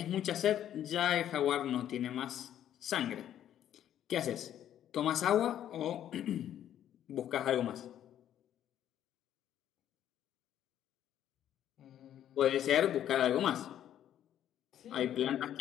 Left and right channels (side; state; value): right; quieter; 10.9 dB